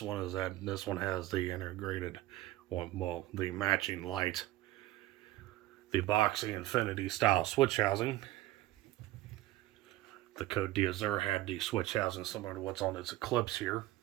one is that this one has the integrated, the matching light, the boxy infinity style switch housing. The Côte d'Azur had the switch housing similar to what's on its Eclipse here,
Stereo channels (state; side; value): quieter; left; 16.3 dB